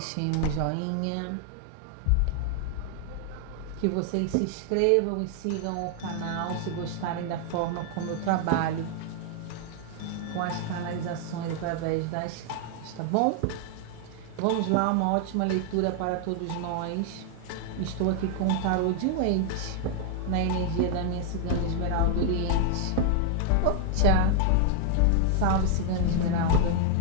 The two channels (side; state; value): both; different; correlation 0.00